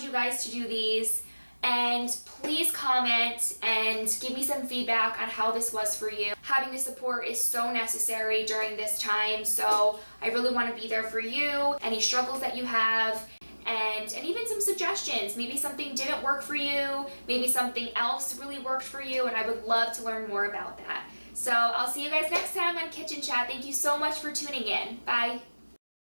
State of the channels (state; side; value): inverted; both; correlation -1.00